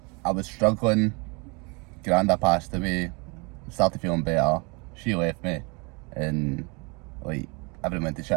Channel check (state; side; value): quieter; left; 30.5 dB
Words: I was struggling, Granda passed away, started feeling better, she left me, and like everything went to